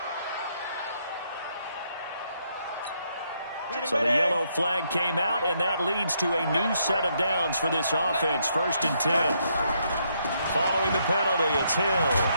So the yellow flag came out, and that leads to a new set of downs for this offense. 1st and 10. Following the penalty, it's Hill.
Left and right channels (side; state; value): both; inverted; correlation -0.74